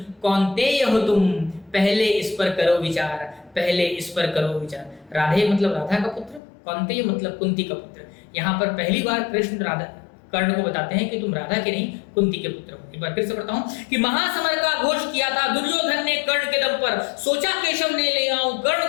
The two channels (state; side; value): drops out; right; at 6.4 s